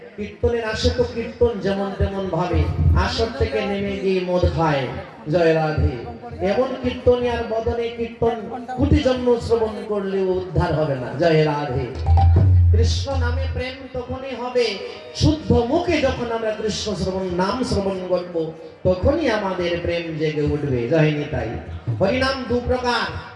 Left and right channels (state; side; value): identical; both; correlation 1.00